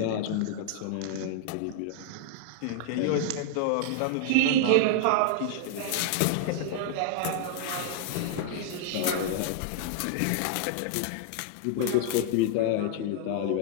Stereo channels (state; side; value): different; both; correlation 0.00